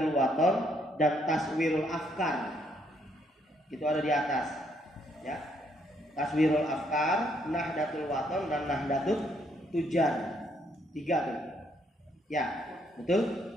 Wathon, dan Taswirul Afkar. Itu ada di atas. Ya. Taswirul Afkar, Nahdlatul Wathon, dan Nahdlatul Tujar. 3 tuh. Ya, betul?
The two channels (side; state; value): both; normal; correlation 0.71